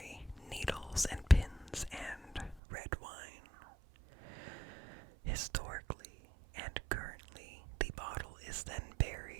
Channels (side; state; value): left; drops out; at 2.6 s